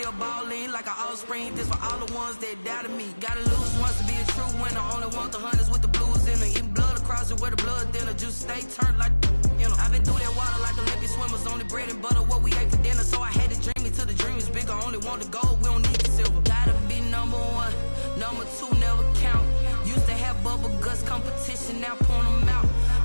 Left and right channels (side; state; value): both; inverted; correlation -1.00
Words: balling like an offspring. This for all the ones that doubted me. Gotta lose once to be a true winner. Only want the hunters with the blues in it. Eating blood across it where the blood thinner. Juice stay turned like, you know. I've been through that water like Olympic swimmers. Only bread and butter what we ate for dinner. So I had to dream it till the dream is bigger. Only want the gold, we don't need the silver. Gotta be number 1, number 2 never count. Used to have bubble guts competition, now point them out.